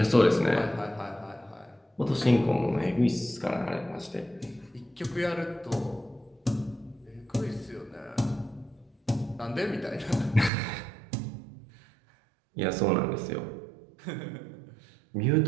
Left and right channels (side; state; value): left; drops out; at 10.5 s